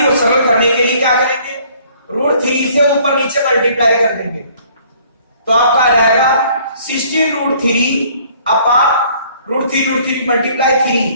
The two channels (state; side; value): inverted; both; correlation -0.58